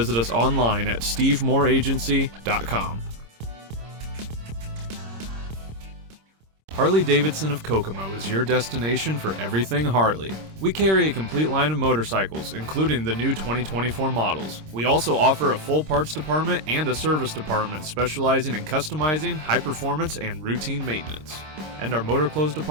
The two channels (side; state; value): left; late; 26 ms